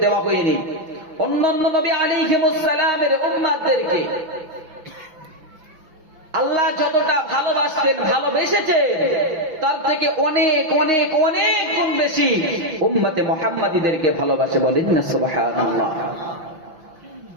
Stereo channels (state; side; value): late; left; 5.9 ms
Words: দেওয়া হয়নি। অন্যান্য নবী আলাইহিমুস সালামের উম্মতদেরকে আল্লাহ যতটা ভালোবাসতেন, ভালোবেসেছেন, তার থেকে অনেক অনেক অনেক গুণ বেশি উম্মতে মুহাম্মাদীদেরকে ভালোবাসে। বলেন না সুবহানাল্লাহ।